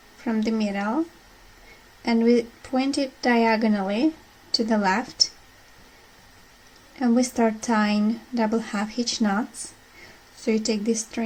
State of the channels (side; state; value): both; identical; correlation 1.00